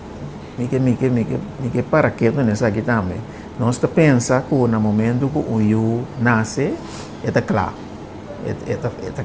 Mike para que não nessa aqui também. Nós pensa que no momento que o eu nasce, eta claro. Eta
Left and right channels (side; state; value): both; identical; correlation 1.00